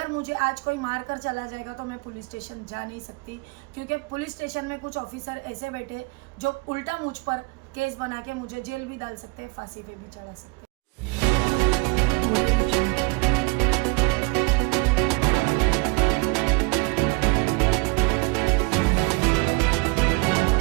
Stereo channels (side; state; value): left; quieter; 27.9 dB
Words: मुझे आज कोई मार कर चला जाएगा तो मैं पुलिस स्टेशन जा नहीं सकती, क्योंकि पुलिस स्टेशन में कुछ ऑफिसर ऐसे बैठे जो उल्टा मुझ पर केस बना के मुझे जेल भी डाल सकते हैं, फांसी पे भी चढ़ा सकते हैं।